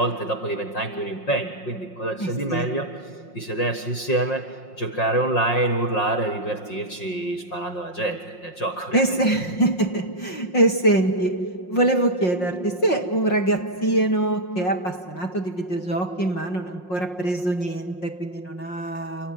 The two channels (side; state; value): right; late; 5.6 ms